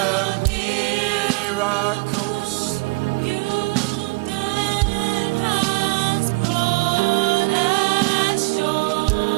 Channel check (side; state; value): left; quieter; 28.2 dB